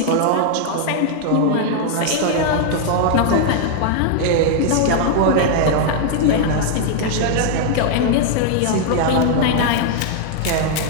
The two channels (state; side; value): different; both; correlation 0.00